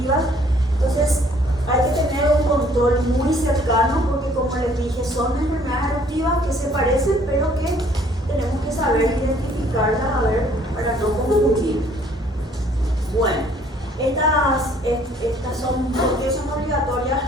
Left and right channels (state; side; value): normal; both; correlation 0.60